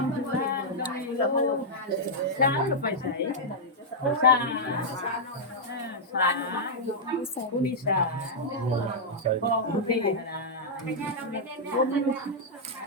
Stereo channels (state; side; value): normal; both; correlation -0.07